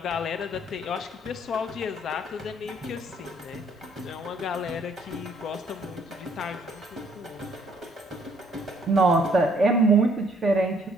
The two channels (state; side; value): normal; both; correlation 0.64